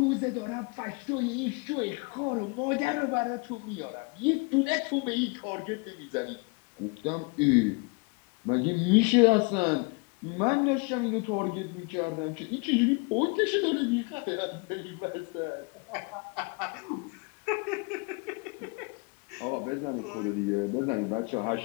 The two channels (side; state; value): right; quieter; 30.9 dB